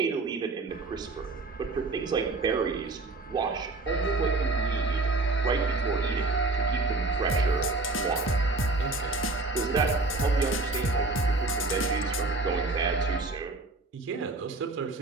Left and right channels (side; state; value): left; quieter; 3.3 dB